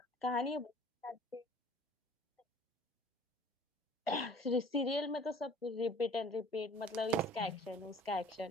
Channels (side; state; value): both; normal; correlation 0.50